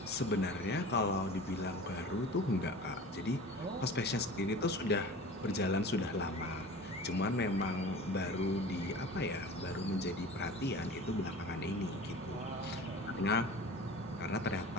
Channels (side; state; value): both; normal; correlation 0.38